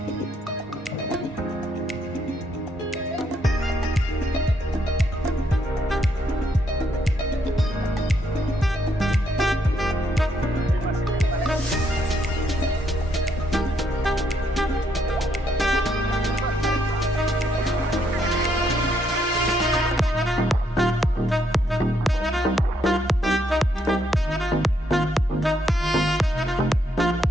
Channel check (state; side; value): normal; both; correlation 0.74